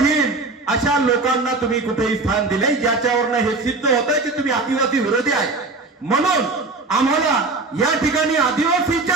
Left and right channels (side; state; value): left; quieter; 3.5 dB